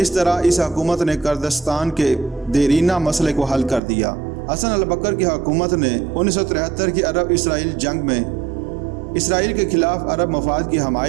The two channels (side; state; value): left; drops out; at 3.8 s